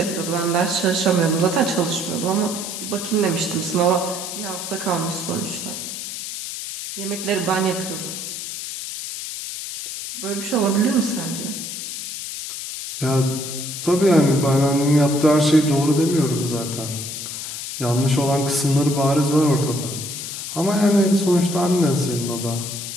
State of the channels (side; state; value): left; noise; hiss, 7 dB below the sound